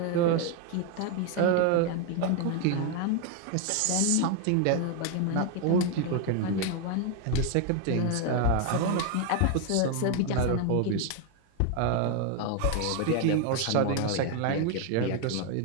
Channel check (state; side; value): different; both; correlation 0.01